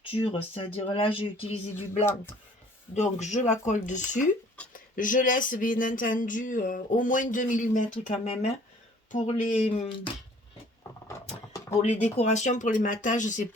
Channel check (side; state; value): both; normal; correlation 0.55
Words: c'est-à-dire là j'ai utilisé du blanc, donc je la colle dessus. Je laisse bien entendu au moins 2 mm quand même, hein, pour les décorations, pour les matages, c'est